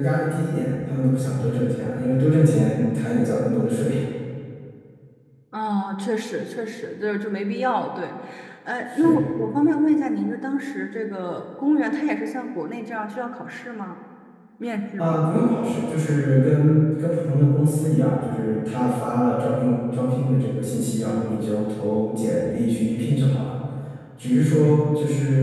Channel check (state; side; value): identical; both; correlation 1.00